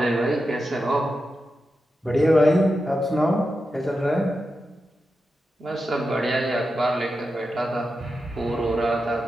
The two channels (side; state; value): both; normal; correlation 0.89